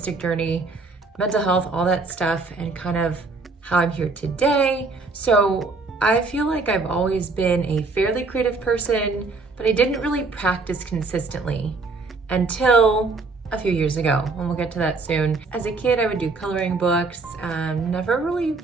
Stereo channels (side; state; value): left; quieter; 3.9 dB